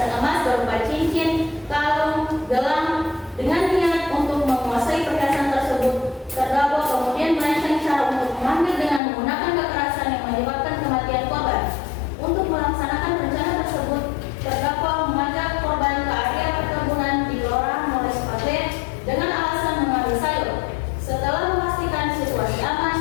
emas berupa cincin, kalung, gelang. Dengan niat untuk menguasai perhiasan tersebut, terdakwa kemudian merancang cara untuk mengambil dengan menggunakan kekerasan yang menyebabkan kematian korban. Untuk melaksanakan rencana tersebut, terdakwa mengajak korban ke area perkebunan di Kelurahan Mall Sipatwe dengan alasan mengambil sayur. Setelah memastikan situasi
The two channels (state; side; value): drops out; right; at 9.0 s